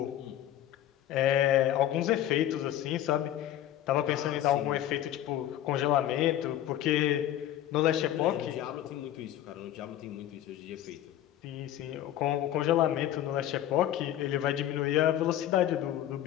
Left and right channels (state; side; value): quieter; right; 12.3 dB